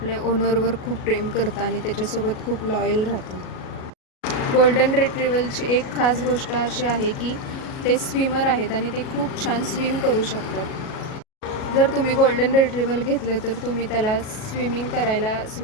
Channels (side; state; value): right; late; 37 ms